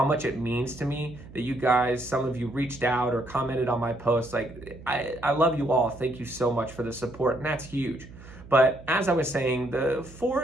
much it means to me that you guys, some of you reached out or commented on my posts. Like, I love you all. Thank you so much for the support, and that's huge. But as I was saying, the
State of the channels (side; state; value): right; noise; hum, 18 dB below the sound